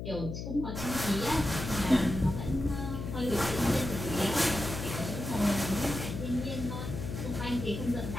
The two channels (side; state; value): left; noise; hum, 6 dB below the sound